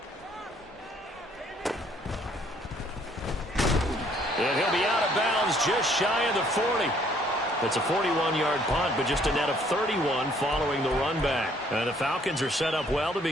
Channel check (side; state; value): both; normal; correlation 0.63